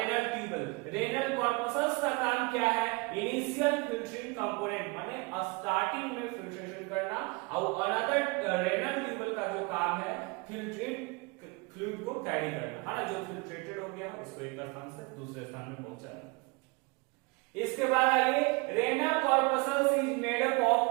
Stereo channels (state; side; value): quieter; left; 27.9 dB